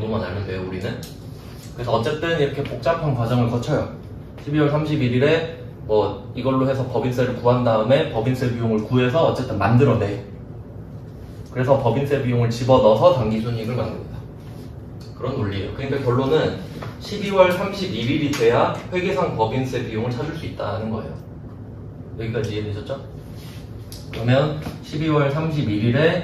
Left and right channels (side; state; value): both; identical; correlation 1.00